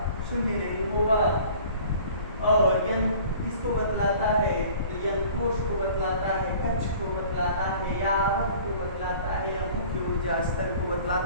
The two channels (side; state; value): both; inverted; correlation -0.48